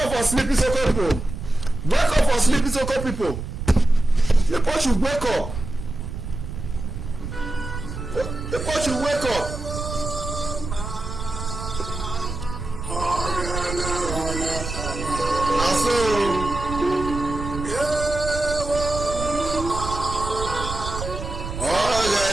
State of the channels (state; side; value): noise; right; rumble, 7 dB below the sound